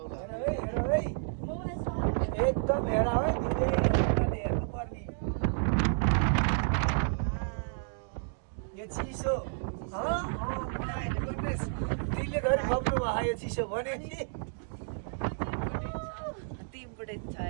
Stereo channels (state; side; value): silent; left; digital silence